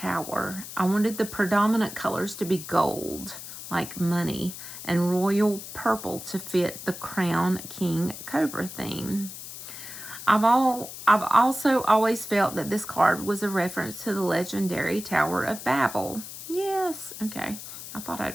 I wanted the predominant colors to be gold, like money, and royal purple to fit the crown king cobra theme. I've also always felt that this card was a reference to the legendary Tower of Babel. Yes, okay. I thought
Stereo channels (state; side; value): noise; left; hiss, 11 dB below the sound